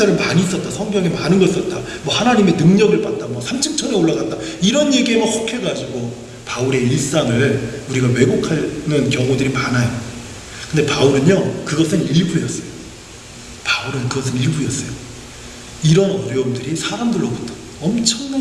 많이 썼다, 성경에 많은 걸 썼다, 하나님의 능력을 받다, 3층천에 올라갔다, 이런 얘기에만 혹해가지고 바울의 일상을 우리가 왜곡하는 경우들이 많아요. 근데 바울은요, 그것은 일부였어요. 이런 어려움들이 사람들로부터 엄청난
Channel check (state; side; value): identical; both; correlation 1.00